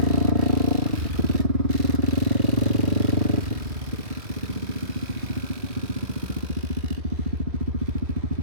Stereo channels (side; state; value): left; late; 2.6 ms